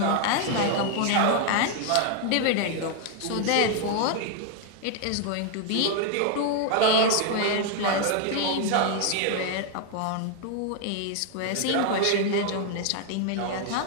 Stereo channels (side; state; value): both; different; correlation 0.00